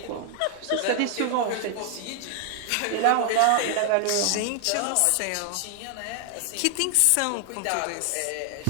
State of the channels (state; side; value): different; both; correlation 0.00